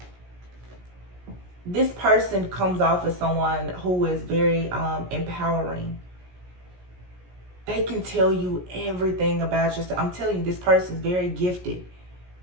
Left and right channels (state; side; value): late; left; 17 ms